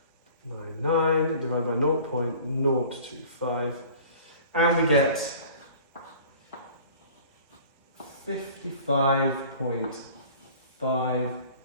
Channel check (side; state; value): both; inverted; correlation -0.46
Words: divided by 0.025, and we get